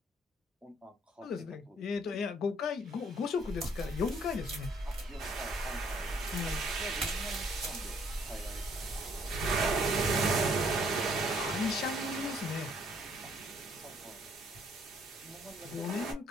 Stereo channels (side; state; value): both; normal; correlation 0.64